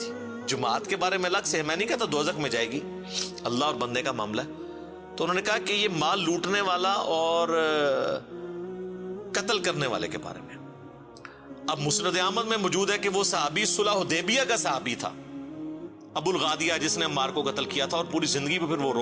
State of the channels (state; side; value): identical; both; correlation 1.00